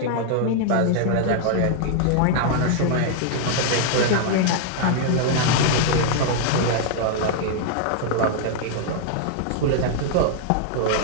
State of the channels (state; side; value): different; both; correlation 0.00